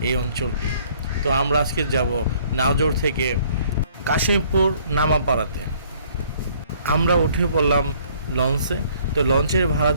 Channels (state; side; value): inverted; both; correlation -0.60